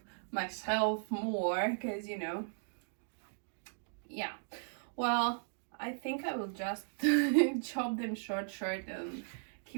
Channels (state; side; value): silent; left; digital silence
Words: myself more, because yeah, well, I think I will just chop them short and